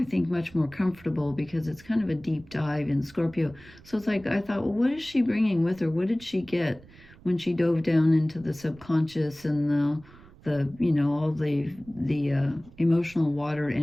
think, much more comfortable because it's kind of a deep dive in Scorpio. So it's like, I thought, well, what is she bringing with her? What did she get when she dove down into the subconscious and the you know, all the emotional water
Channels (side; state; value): right; noise; rumble, 23 dB below the sound